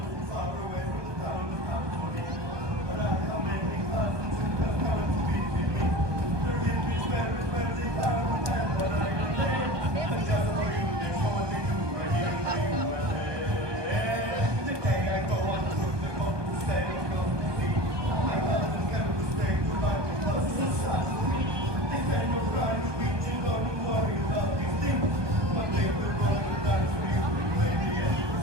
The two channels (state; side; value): late; left; 1.2 ms